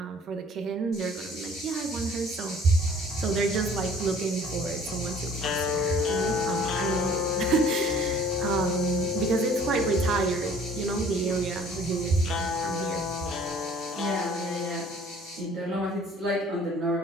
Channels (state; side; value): normal; both; correlation 0.53